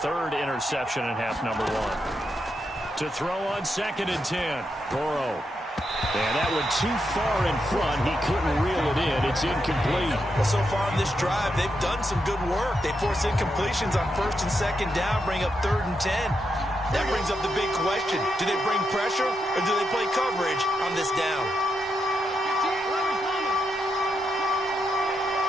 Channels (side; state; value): both; normal; correlation 0.83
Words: 3rd interception in half number 1. To throw on 2nd and 10. Burrow. And that went too far in front. He couldn't reel it in. It's incomplete. Well, so far in this drive, they've done some good work. They force incompletions on 1st and 2nd down, bring up 3rd and 10. That brings up the big question. Do they bring pressure or do they play coverage on this down?